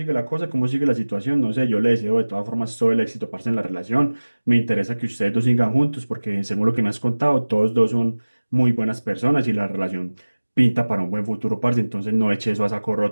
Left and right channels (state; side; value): inverted; both; correlation -1.00